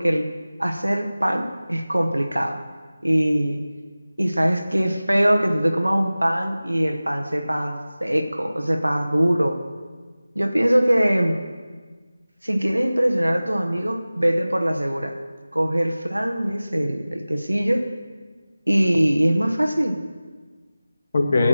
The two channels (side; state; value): both; inverted; correlation -0.97